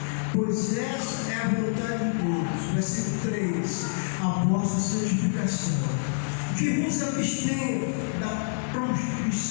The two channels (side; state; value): right; silent; 60 dB below the other